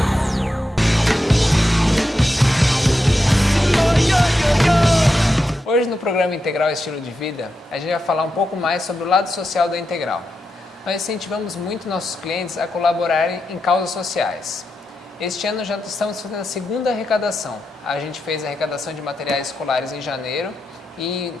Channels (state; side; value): normal; both; correlation 0.87